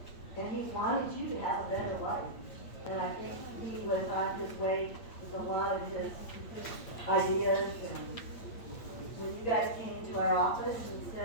and he wanted you to have a better life. And I think he was on his way with a lot of his ideas. And when you guys came to our office and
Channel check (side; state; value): right; late; 8.6 ms